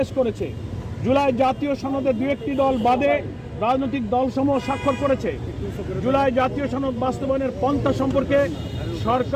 করেছে। জুলাই জাতীয় সনদে 2-1টি দল বাদে রাজনৈতিক দলসমূহ স্বাক্ষর করেছে। জুলাই জাতীয় সনদ বাস্তবায়নের পন্থা সম্পর্কে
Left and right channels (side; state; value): both; identical; correlation 1.00